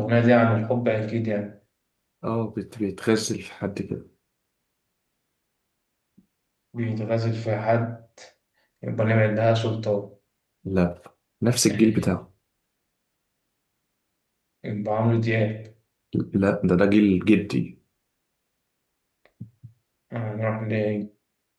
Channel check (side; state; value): both; identical; correlation 1.00